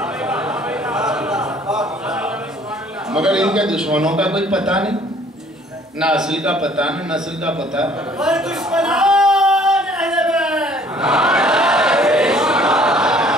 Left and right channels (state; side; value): normal; both; correlation 0.56